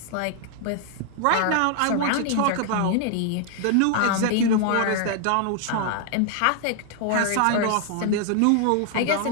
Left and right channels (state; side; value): different; both; correlation 0.00